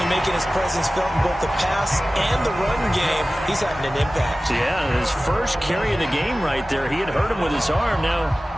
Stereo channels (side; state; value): both; normal; correlation 0.96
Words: making his presence felt in both the pass and the run game. He's having an impact. Yeah, his first carry of the game right there. He had hurt him with his arm.